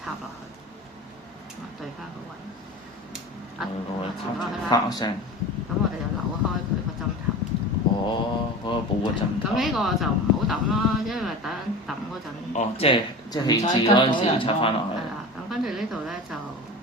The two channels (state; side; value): normal; both; correlation 0.32